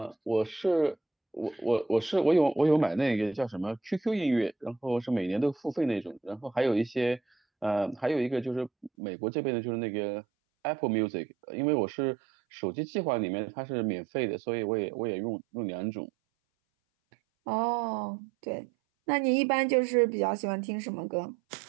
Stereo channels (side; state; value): left; drops out; at 8.9 s